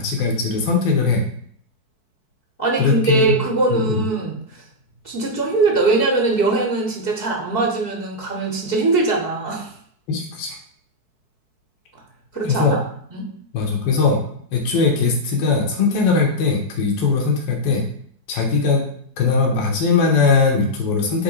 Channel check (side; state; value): right; late; 4.6 ms